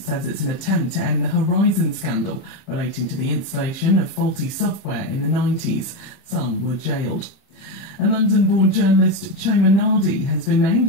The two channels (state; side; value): late; right; 31 ms